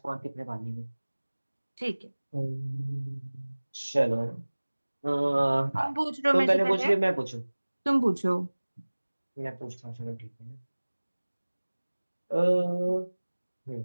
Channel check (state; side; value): inverted; both; correlation -1.00